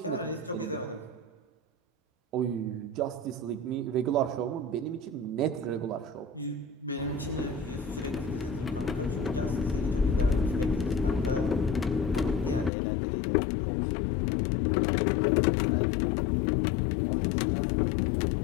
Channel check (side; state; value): right; drops out; at 12.7 s